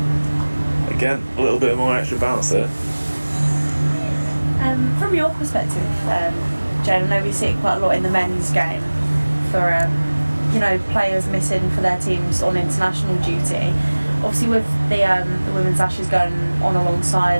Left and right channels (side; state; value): both; inverted; correlation -1.00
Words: Again, a little bit more extra balance there. From your perspective, Jane, I know we see it quite a lot in the men's game for players missing for their teams on international duty. Obviously, with the women's Ashes going on